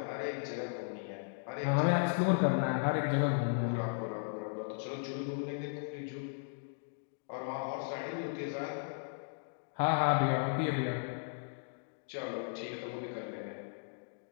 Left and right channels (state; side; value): silent; right; digital silence